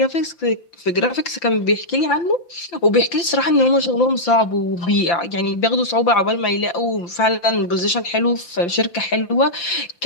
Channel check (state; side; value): late; right; 5.8 ms